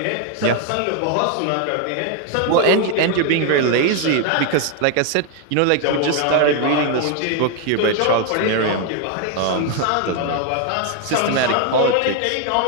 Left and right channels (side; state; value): both; different; correlation 0.00